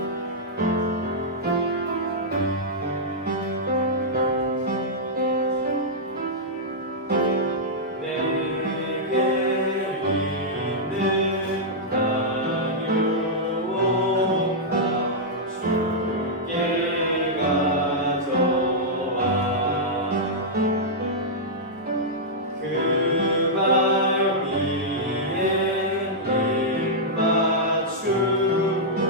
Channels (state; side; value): normal; both; correlation -0.09